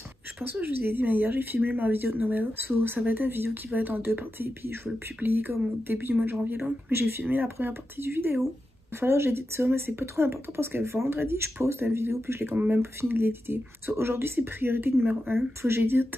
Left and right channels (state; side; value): normal; both; correlation 0.90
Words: je pense que je vous ai dit mais hier j'ai filmé ma vidéo de Noël. So ça va être une vidéo qui va être en 2 parties puis je vais le publier comme au début du mois de janvier là. Mais j'ai filmé la première partie du vidéo. Il va falloir que j'édite ça mais c'est pas trop important parce que vendredi je poste une vidéo puis je l'ai quand même pas fini de l'éditer. So aujourd'hui c'est priorité numéro 1. Faut que